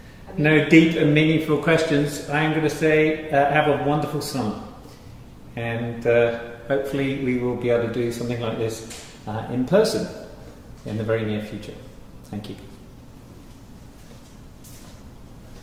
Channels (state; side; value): identical; both; correlation 1.00